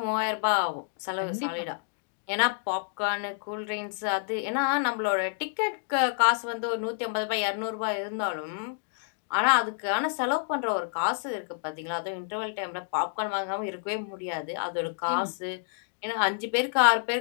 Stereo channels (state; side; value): silent; right; digital silence